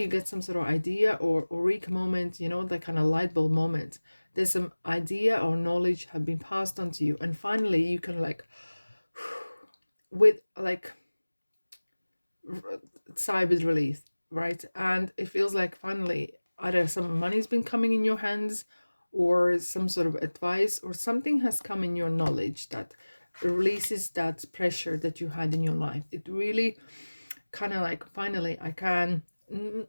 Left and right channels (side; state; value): both; inverted; correlation -1.00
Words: get some sort of idea or eureka moment, that kind of light bulb moment. There's some idea or knowledge have been passed on to you, and finally you can like with like sigh with relief, right? And it feels like finally either some money's been coming in your hands, or some sort of advice, or something has come in your knowledge that releases that pressure that you had in your life. It really kind of like, finally I can,